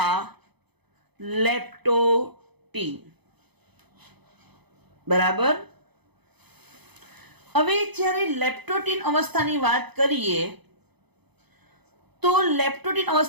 લેપ્ટોટીન. બરાબર. હવે જ્યારે લેપ્ટોટીન અવસ્થાની વાત કરીએ તો લેપ્ટોટીન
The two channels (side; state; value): left; late; 0.98 ms